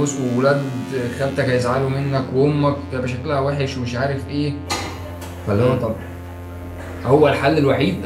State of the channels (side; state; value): both; identical; correlation 1.00